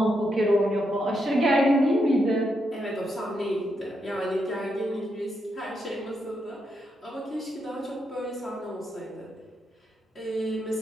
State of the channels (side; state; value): both; normal; correlation 0.81